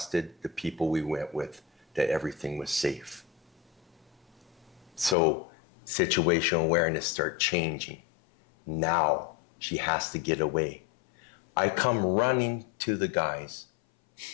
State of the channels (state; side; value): drops out; right; at 5.2 s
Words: the people we went with, that everything was safe. So situational awareness started changing. Now she has to get away. I come running to the guys,